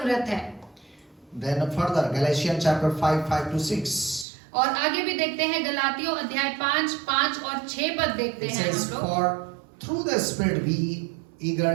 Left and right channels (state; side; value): drops out; left; at 4.2 s